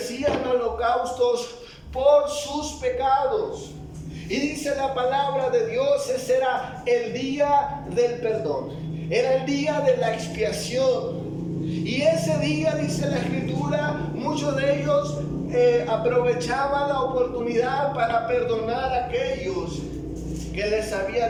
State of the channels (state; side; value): identical; both; correlation 1.00